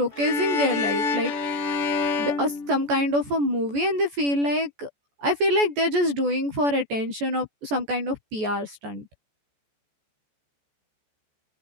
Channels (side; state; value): left; late; 14 ms